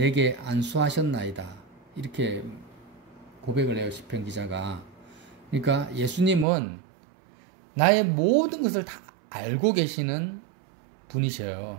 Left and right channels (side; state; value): left; drops out; at 6.5 s